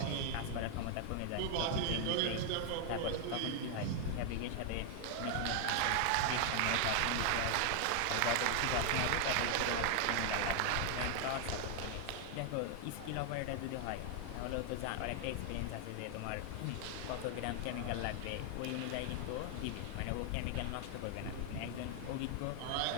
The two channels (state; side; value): different; both; correlation 0.00